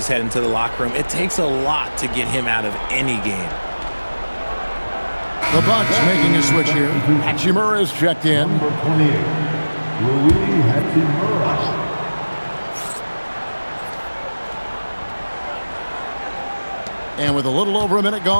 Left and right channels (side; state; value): both; inverted; correlation -1.00